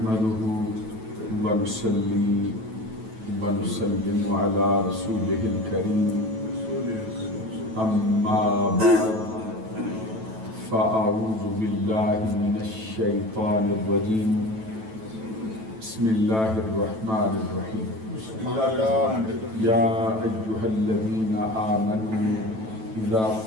ونصلي ونسلم على رسوله الكريم أما بعد فأعوذ بالله من الشيطان الرجيم بسم الله الرحمن الرحيم يا أيها الذين آمنوا إذا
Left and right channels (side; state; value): left; late; 9.1 ms